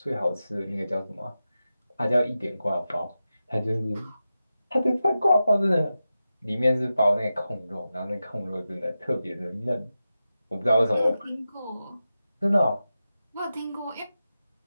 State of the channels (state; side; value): inverted; both; correlation -0.92